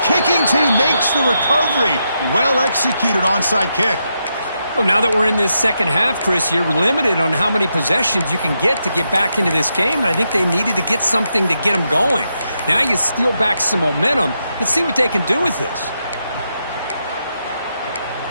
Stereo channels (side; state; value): both; inverted; correlation -0.83